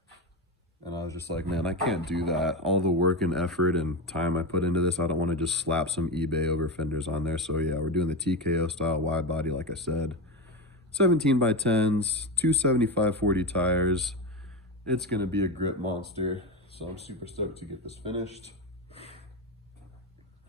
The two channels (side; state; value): both; normal; correlation 0.16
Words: and I was just like, man, I can't do that. All the work and effort and time I put into this, I don't want to just slap some eBay over fenders on there. So yeah, we're doing the TKO style wide body, like I said. 17 by 10s, two 75/40 tires. It's gonna be a grip monster. So I'm super stoked to get this finished.